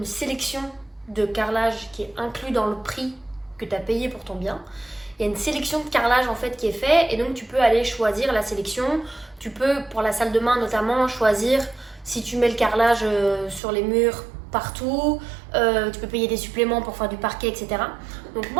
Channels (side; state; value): left; drops out; at 13.6 s